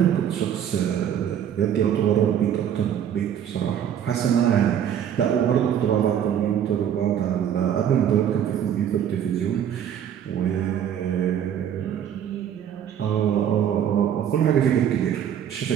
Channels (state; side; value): quieter; left; 9.4 dB